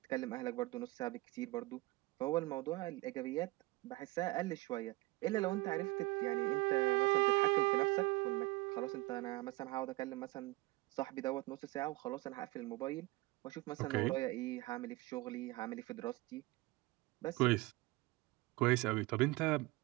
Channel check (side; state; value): left; quieter; 22.0 dB